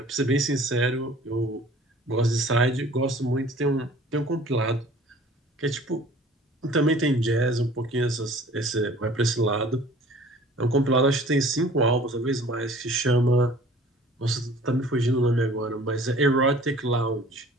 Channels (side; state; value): both; normal; correlation 0.49